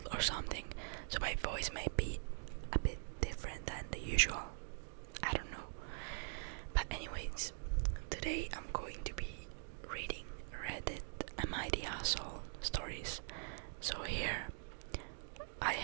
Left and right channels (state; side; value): silent; left; digital silence